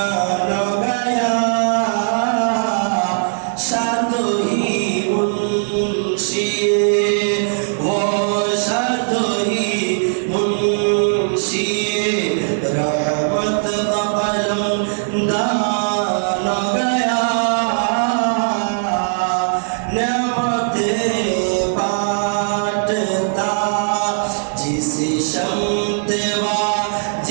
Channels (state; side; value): silent; left; 67 dB below the other